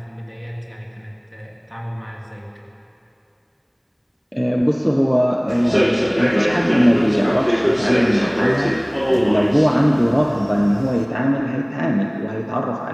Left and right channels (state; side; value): identical; both; correlation 1.00